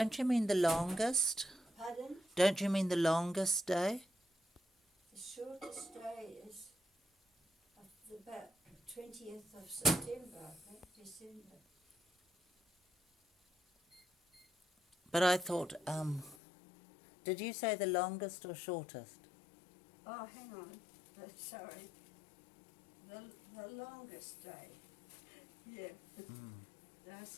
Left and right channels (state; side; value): drops out; right; at 16.4 s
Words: you mean the longest? Pardon? Don't you mean the longest day? The shortest day is about 20th of September, I think, December. But I thought, did you say the longest or shortest? Oh, hang on. Sorry. The longest day. Yeah. I